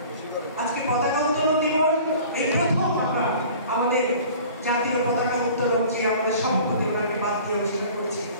আজকে পতাকা উত্তোলন দিবস, এই প্রথম আমরা আমাদের জাতীয় পতাকা উত্তোলন যে আমাদের সভাপতি ওনাকে বাদ দিয়ে অস্বীকার করেছি।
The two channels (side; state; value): both; inverted; correlation -0.45